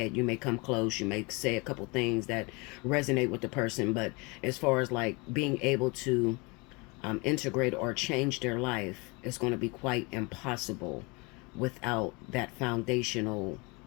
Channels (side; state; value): right; quieter; 28.0 dB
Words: you may come close, you may say a couple things that resonate with the person, but as far as like being able to integrate or change their life, is going to be quite impossible without that foundational